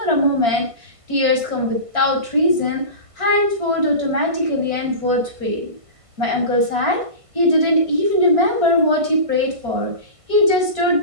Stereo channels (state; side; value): late; left; 1.5 ms